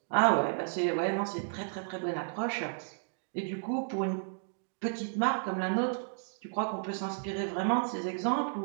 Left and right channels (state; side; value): silent; left; digital silence